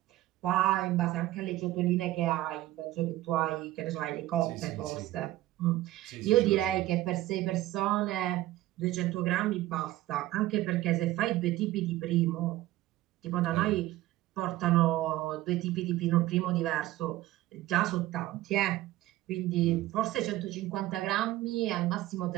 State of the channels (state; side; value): quieter; left; 15.9 dB